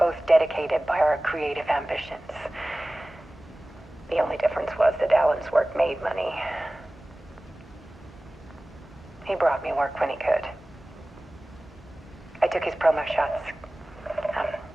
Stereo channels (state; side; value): normal; both; correlation 0.98